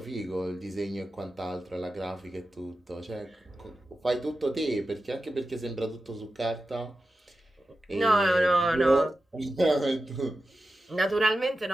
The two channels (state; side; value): normal; both; correlation 0.92